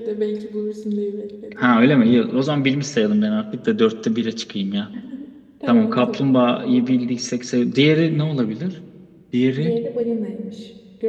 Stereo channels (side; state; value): both; identical; correlation 1.00